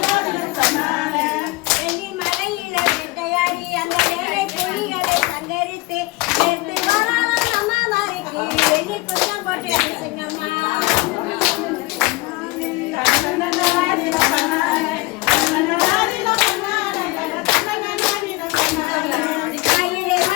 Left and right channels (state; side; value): quieter; right; 22.2 dB